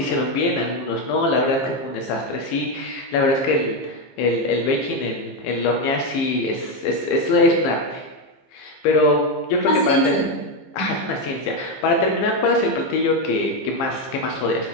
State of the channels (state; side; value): late; right; 15 ms